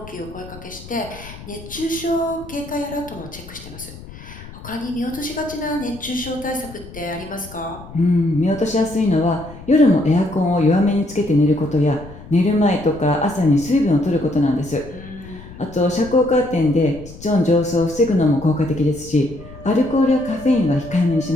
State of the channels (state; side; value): noise; left; rumble, 16 dB below the sound